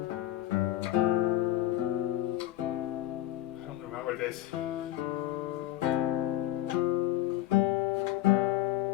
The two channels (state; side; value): quieter; right; 14.5 dB